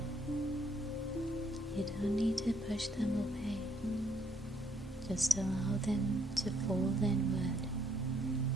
You don't need to push them away. Just allow them to fall inward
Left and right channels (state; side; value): normal; both; correlation 0.69